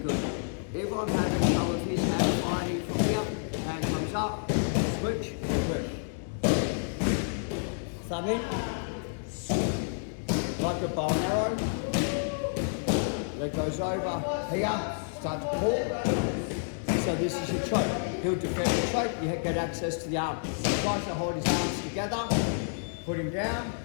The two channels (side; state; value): right; silent; digital silence